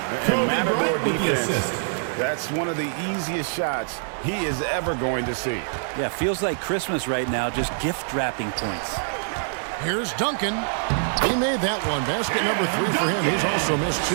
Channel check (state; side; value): silent; left; digital silence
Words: And Matador Bryant with the defense, assist. that's one of the easiest shots he is ever going to see. Yeah, feels like Christmas right now, just gift wrapping points. Here's Duncan. He made that one. Basket number 3 for him. He's also missed 2.